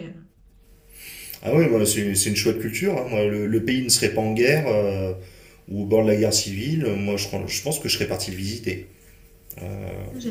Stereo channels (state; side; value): identical; both; correlation 1.00